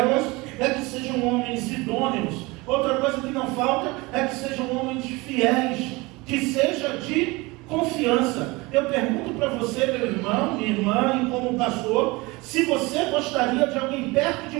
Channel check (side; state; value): left; quieter; 23.6 dB